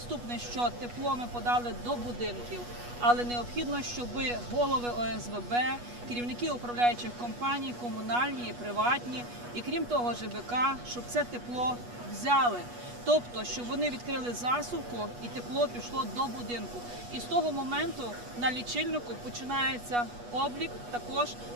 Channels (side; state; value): left; late; 8.3 ms